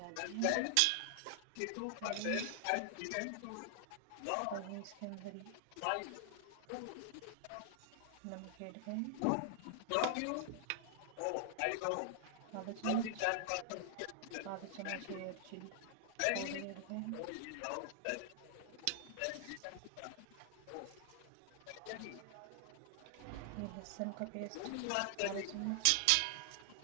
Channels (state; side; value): different; both; correlation 0.00